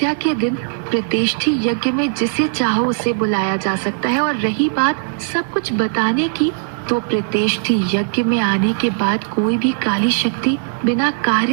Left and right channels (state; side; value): silent; left; 67 dB below the other